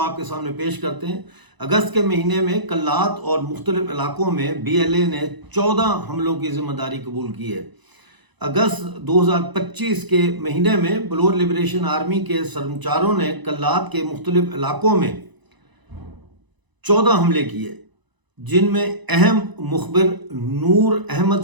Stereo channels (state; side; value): late; left; 1.0 ms